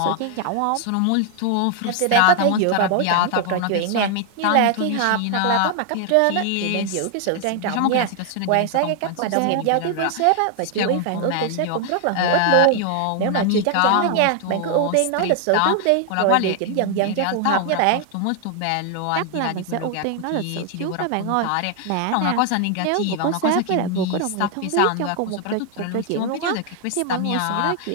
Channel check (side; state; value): both; different; correlation 0.00